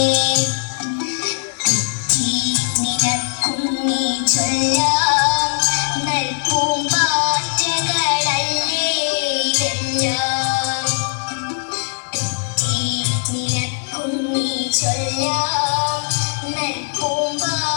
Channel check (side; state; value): right; silent; digital silence